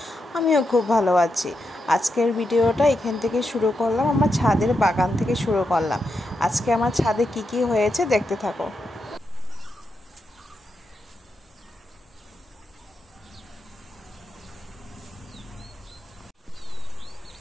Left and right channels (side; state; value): both; normal; correlation 0.85